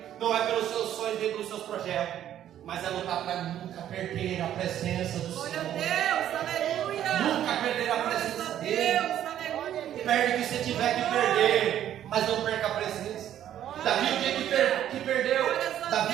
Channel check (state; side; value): quieter; left; 11.1 dB